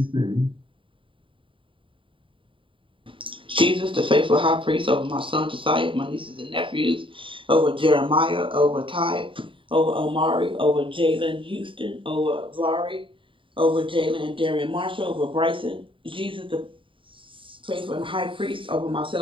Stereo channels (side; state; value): left; late; 0.25 ms